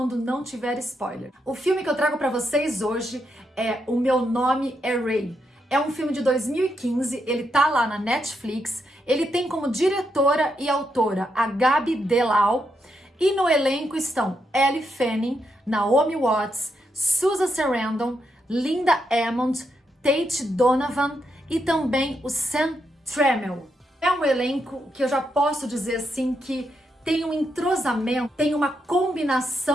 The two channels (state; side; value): normal; both; correlation 0.81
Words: não tiver spoiler. O filme que eu trago para vocês hoje é O Meu Nome é Ray. É um filme de 2015, ele tá lá na Netflix, ele tem como diretora e autora a Gabi Delau, e no elenco estão Elle Fanning, Naomi Watts, Susan Sarandon, Linda Hammond, Tate Donovan e também o Sam Tramiel. É um elenco que eu já posso dizer assim que tem um entrosamento, tem uma